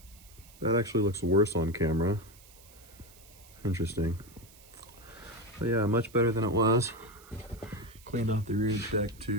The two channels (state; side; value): noise; right; hiss, 23 dB below the sound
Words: that actually looks worse on camera. Interesting. But yeah, much better than it was. Cleaned off the rear deck